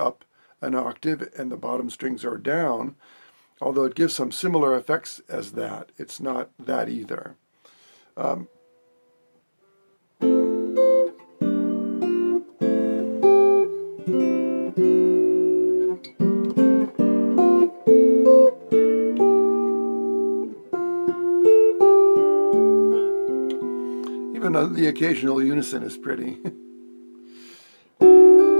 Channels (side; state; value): both; inverted; correlation -1.00